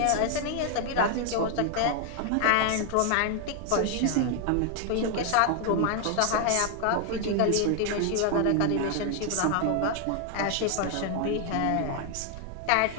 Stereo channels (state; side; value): different; both; correlation 0.00